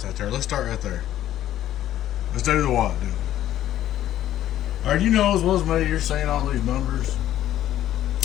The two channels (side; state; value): right; quieter; 12.5 dB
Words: out there. Let's start right there. Let's do the watt deal. Alright, you know as well as me, you're seeing all these numbers.